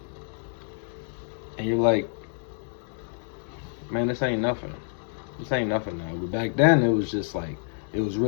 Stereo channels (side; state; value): right; silent; digital silence